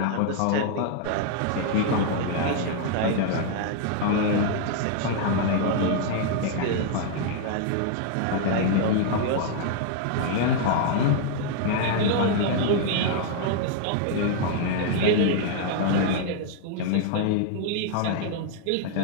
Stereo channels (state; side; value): different; both; correlation 0.00